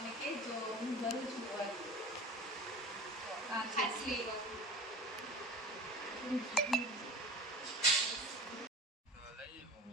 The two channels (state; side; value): normal; both; correlation 0.36